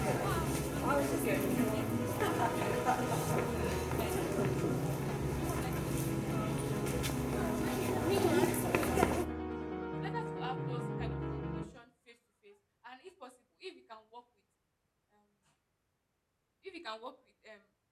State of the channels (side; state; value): both; identical; correlation 1.00